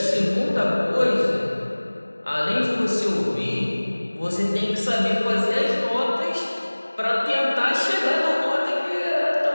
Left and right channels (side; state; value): both; inverted; correlation -1.00